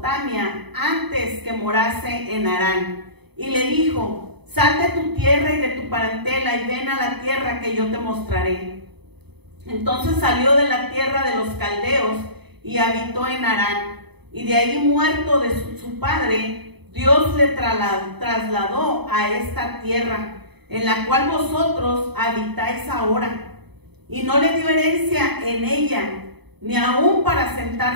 antes que morase en Harán, y le dijo, sal de tu tierra y de tu parentela y ven a la tierra que yo te mostraré. Entonces salió de la tierra de los caldeos y habitó en Harán, y de ahí, muerto de su padre, Dios le trasladó a esta tierra, en la cual vosotros habitáis ahora, y no le dio herencia en ella, ni aún para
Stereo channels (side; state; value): left; late; 0.98 ms